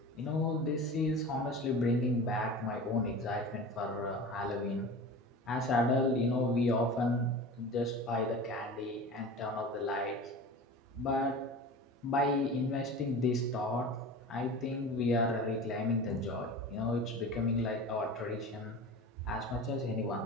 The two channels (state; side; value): normal; both; correlation 0.34